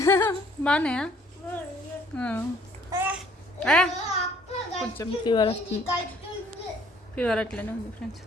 బాగున్నాయా? కొంచెం ఫీవర్ వస్తుంది. ఫీవర్ అట్లనే ఉంది ఫ్రెండ్స్.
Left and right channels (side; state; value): both; normal; correlation 0.60